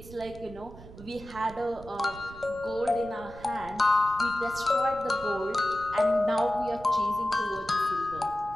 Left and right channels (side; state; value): right; noise; rumble, 17 dB below the sound